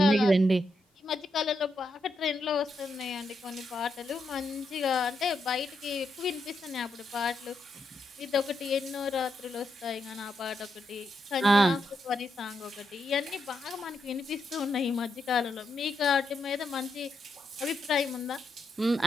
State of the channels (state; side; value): normal; both; correlation 0.83